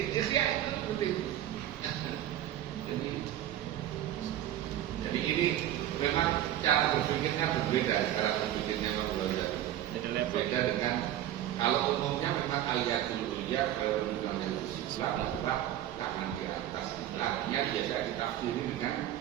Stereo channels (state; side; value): quieter; left; 12.3 dB